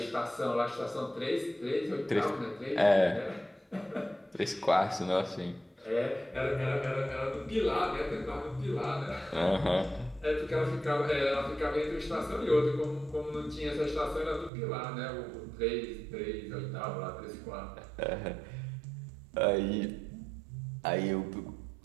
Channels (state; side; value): drops out; left; at 14.5 s